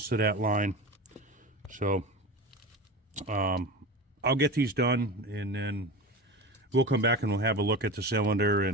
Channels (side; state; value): both; normal; correlation 0.29